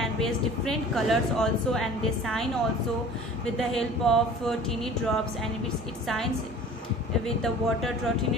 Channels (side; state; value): both; normal; correlation 0.44